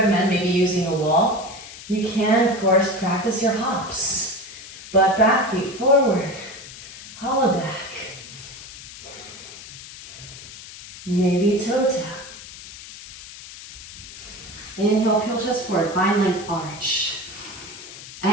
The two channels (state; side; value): noise; left; hiss, 15 dB below the sound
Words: maybe using a wall, you can, of course, practice your hops. Butt back, feet forward, hollow back. Maybe toe tap. Inhale, peel chest forward, find length arch.